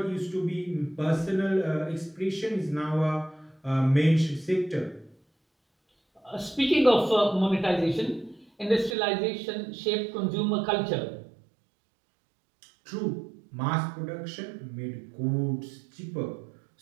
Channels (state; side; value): drops out; left; at 9.0 s